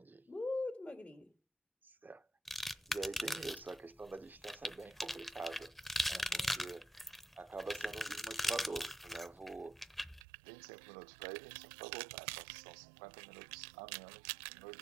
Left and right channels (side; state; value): left; drops out; at 10.2 s